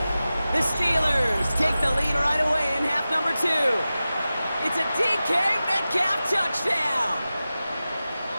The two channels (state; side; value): inverted; both; correlation -0.95